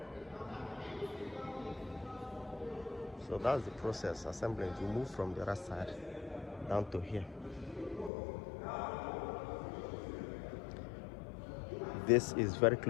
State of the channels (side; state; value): right; drops out; at 8.1 s